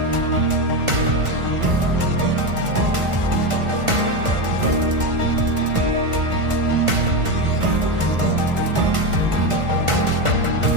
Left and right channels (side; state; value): left; late; 1.5 ms